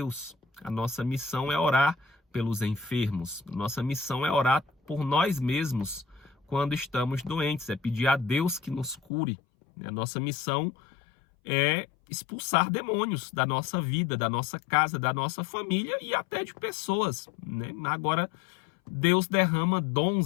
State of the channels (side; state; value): right; drops out; at 9.0 s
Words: A nossa missão é orar pelos enfermos. Nossa missão é orar por nós mesmos quando estamos doentes, é pedir a Deus que nos cure. A nossa missão é expulsar demônios da nossa vida, da nossa casa, da nossa família e até de pessoas, né? Agora, Deus derrama